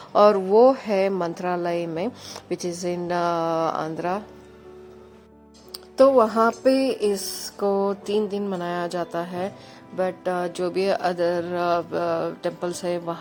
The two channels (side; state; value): both; identical; correlation 1.00